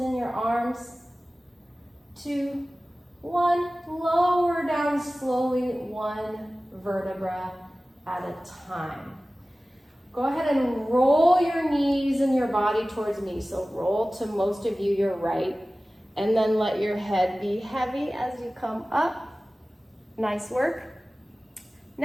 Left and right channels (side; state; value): both; normal; correlation 0.97